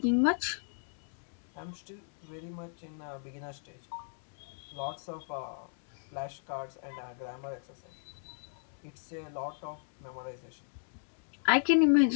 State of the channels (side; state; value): right; silent; digital silence